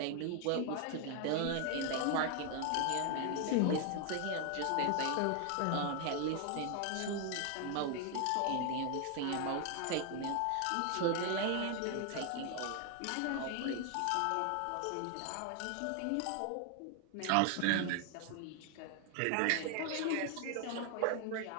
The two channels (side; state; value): both; different; correlation 0.00